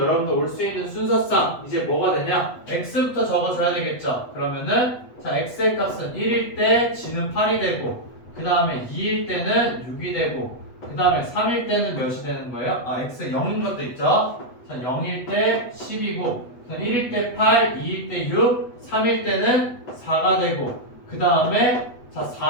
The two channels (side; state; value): right; late; 8.1 ms